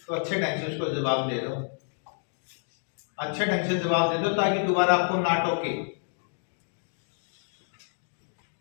तो अच्छे ढंग से उसको जवाब दे दो, अच्छे ढंग से जवाब दे दो ताकि दोबारा आपको ना टोके।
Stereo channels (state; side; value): silent; right; digital silence